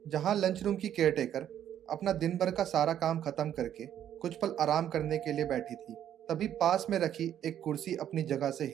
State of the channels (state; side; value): quieter; left; 10.5 dB